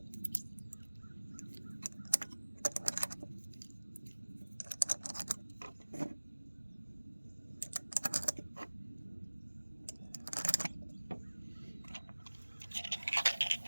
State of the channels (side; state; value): both; inverted; correlation -1.00